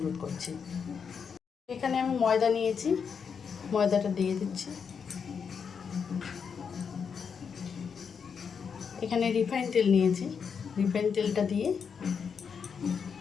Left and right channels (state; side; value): quieter; right; 6.4 dB